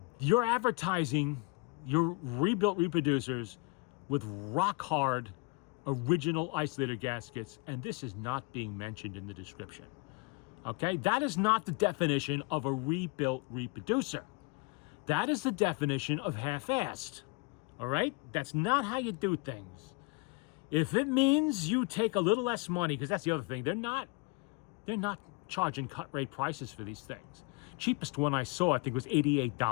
You're advertising your rebuilt reproducers with rock hard original isolator gaskets, and this is not being mentioned in the description. Okay, that is not the definition of a rebuilt reproducer. That is the definition of half-assed. All right, that's not how you do things. If it means you take a little less money, because that's the other thing, they're not charging cut rate prices for these things. Cheapest one I saw, I think, was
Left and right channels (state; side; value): quieter; right; 28.8 dB